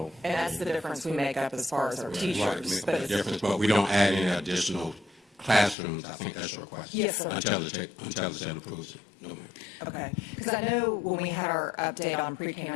And that's the difference we make up as far as our Right, teachers. make a difference, but we don't add any additional classrooms. I think that's your question. Yes, sir. Until the state approves it. No, ma'am. Okay, because I know when we had our update on pre-K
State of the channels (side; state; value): right; drops out; at 5.8 s